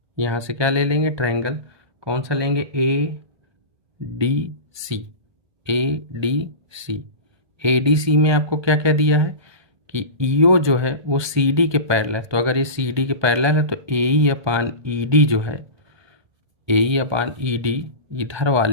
यहाँ से क्या ले लेंगे? ट्रायंगल कौन सा लेंगे? ADC। ADC ADC में आपको क्या क्या दिया है कि EO जो है वो CD के पैरेलल है। तो अगर ये CD के पैरेलल है तो AE अपान ED जो है, AE अपान ED इधर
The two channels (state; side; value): late; left; 1.2 ms